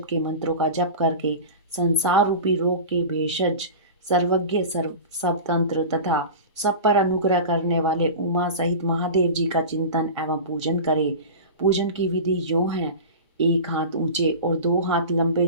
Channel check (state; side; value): inverted; both; correlation -0.31